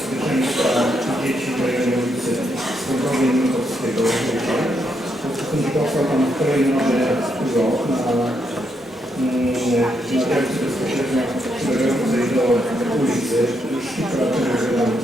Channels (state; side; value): normal; both; correlation 0.79